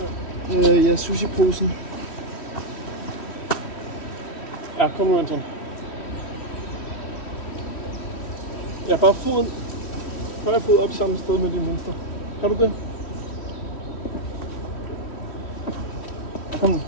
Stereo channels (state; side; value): late; right; 3.1 ms